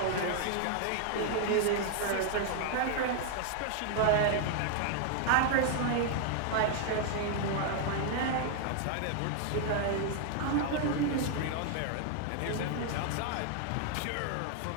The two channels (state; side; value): different; both; correlation 0.00